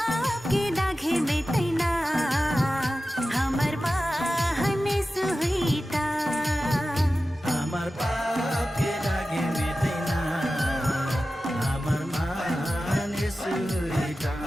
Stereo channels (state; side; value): normal; both; correlation 0.94